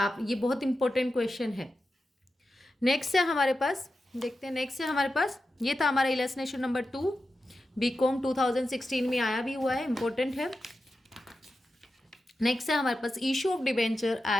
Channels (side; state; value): both; normal; correlation 0.91